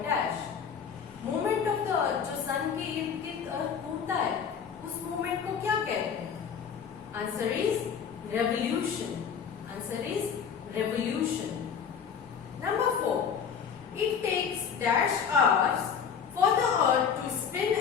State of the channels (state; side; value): quieter; right; 7.1 dB